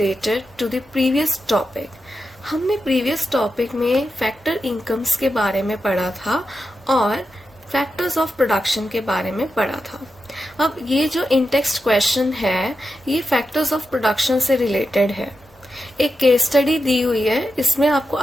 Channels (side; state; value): both; normal; correlation 0.90